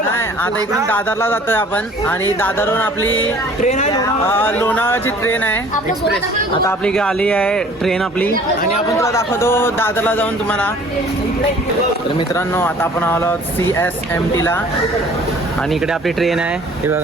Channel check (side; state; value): both; normal; correlation 0.52